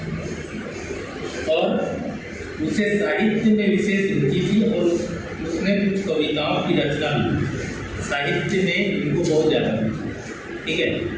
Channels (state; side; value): identical; both; correlation 1.00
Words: और उसे साहित्य में विशेष रुचि थी और उसने कुछ कविताओं की रचना भी, साहित्य में इनको बहुत ज़्यादा, ठीक है।